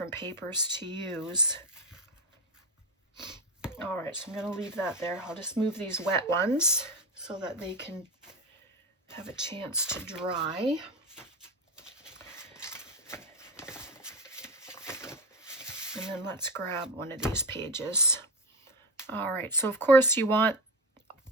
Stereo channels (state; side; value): normal; both; correlation 0.19